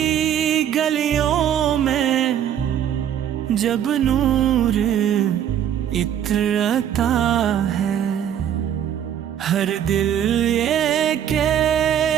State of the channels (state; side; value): quieter; left; 9.9 dB